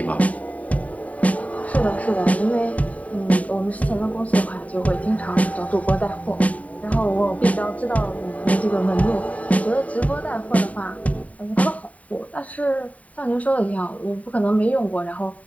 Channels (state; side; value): late; right; 0.069 ms